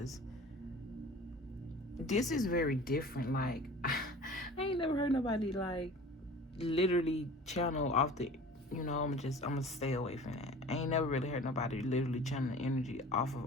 this is very different. Like I ain't never heard nobody like literally channel off the, I'm gonna stay away from that. I ain't never really heard nobody literally channel the energy off of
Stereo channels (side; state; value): both; normal; correlation 0.42